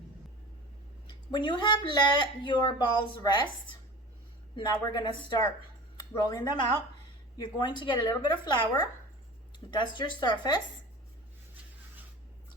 When you have let your balls rest, now we're gonna start rolling them out. You're going to get a little bit of flour, dust your surface,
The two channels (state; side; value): normal; both; correlation 0.37